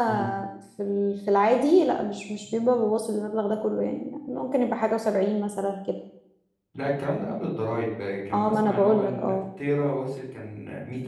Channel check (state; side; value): identical; both; correlation 1.00